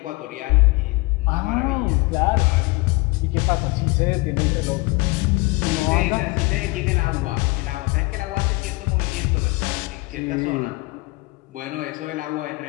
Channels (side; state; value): right; quieter; 24.4 dB